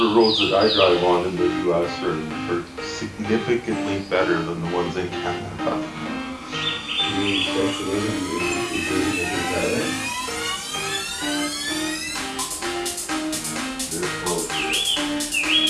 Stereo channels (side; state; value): both; identical; correlation 1.00